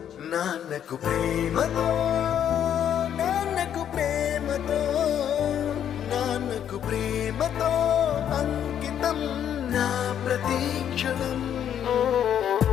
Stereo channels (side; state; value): right; quieter; 9.5 dB